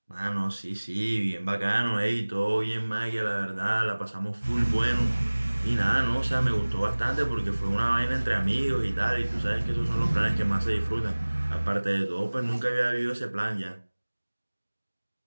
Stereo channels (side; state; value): both; inverted; correlation -1.00